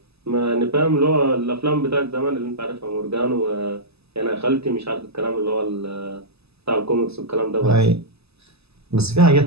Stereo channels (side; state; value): left; late; 0.79 ms